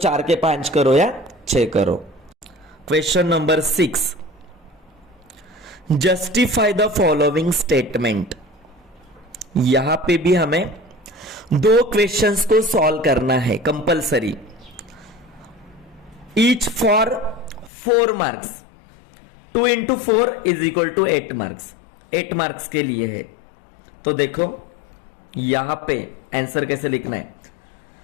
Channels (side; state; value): right; drops out; at 17.7 s